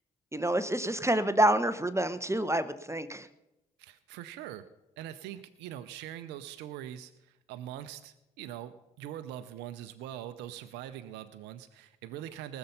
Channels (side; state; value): both; normal; correlation 0.67